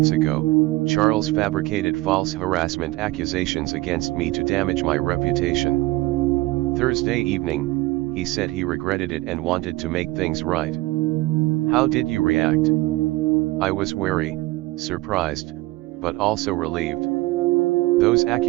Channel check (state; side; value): quieter; left; 19.6 dB